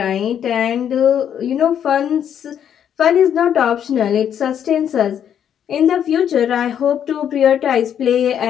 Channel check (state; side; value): quieter; right; 9.1 dB